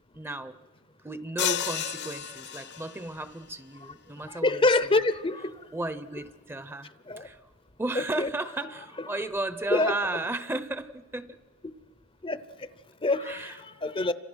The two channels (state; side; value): normal; both; correlation 0.42